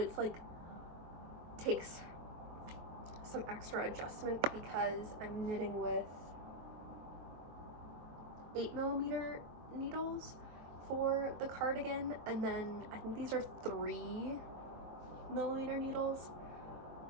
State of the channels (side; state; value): left; late; 23 ms